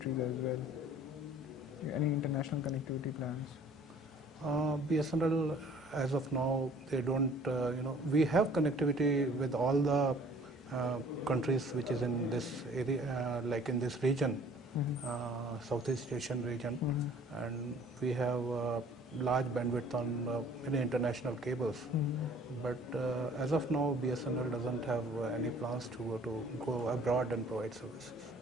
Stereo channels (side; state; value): both; normal; correlation 0.53